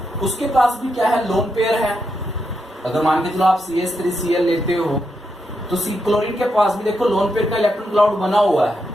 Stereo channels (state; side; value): normal; both; correlation 0.83